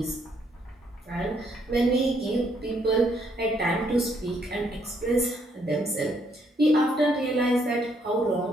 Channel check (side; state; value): both; normal; correlation 0.71